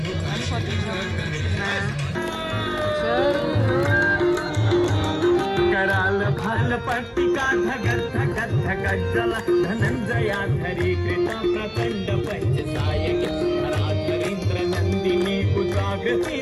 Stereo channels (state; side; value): identical; both; correlation 1.00